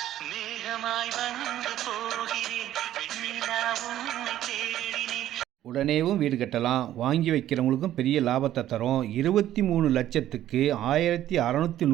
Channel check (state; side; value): quieter; left; 12.6 dB